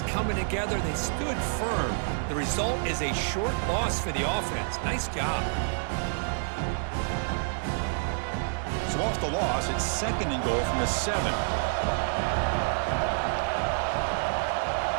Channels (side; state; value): left; silent; digital silence